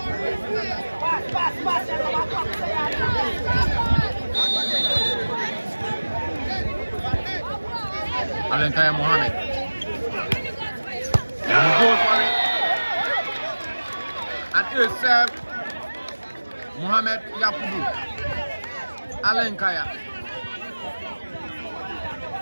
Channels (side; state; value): both; inverted; correlation -1.00